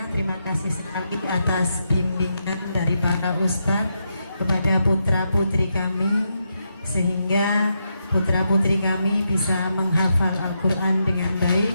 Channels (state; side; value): inverted; both; correlation -0.83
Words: terima kasih sekali atas bimbingan dari para ustadz kepada putra putri kami, sehingga putra putri kami bisa menghafal Al-Quran dengan